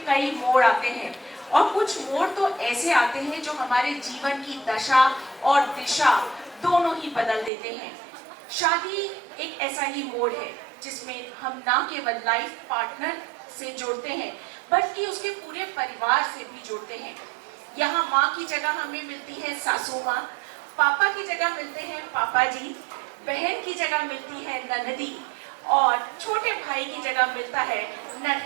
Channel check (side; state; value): left; drops out; at 7.5 s